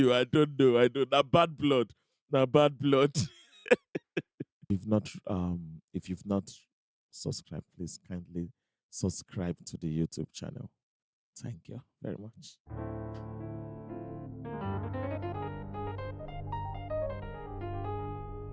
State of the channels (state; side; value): identical; both; correlation 1.00